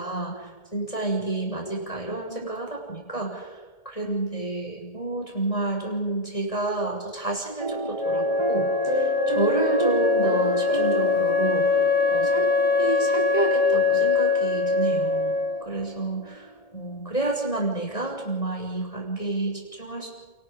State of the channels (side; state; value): right; late; 1.7 ms